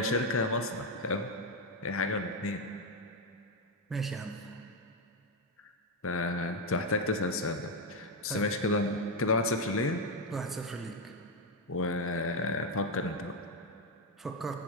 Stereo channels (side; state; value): both; normal; correlation 0.05